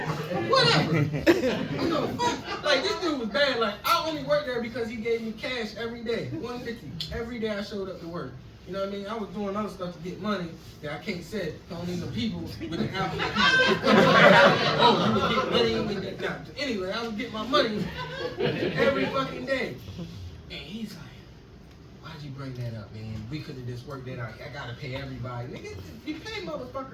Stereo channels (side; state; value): both; identical; correlation 1.00